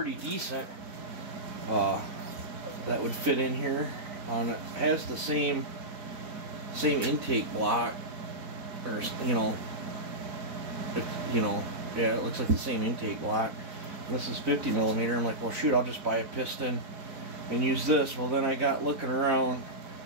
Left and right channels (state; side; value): late; left; 4.0 ms